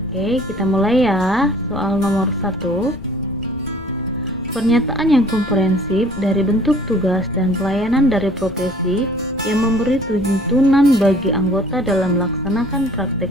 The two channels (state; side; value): noise; left; rumble, 15 dB below the sound